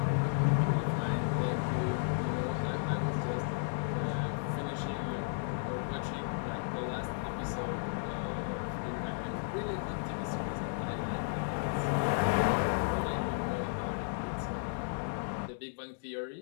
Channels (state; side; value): silent; right; digital silence